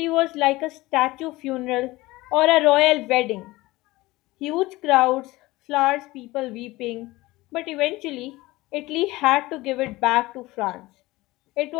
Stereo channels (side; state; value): right; quieter; 19.7 dB